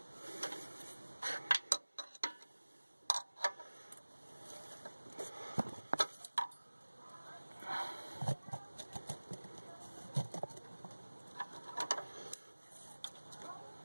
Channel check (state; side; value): inverted; both; correlation -1.00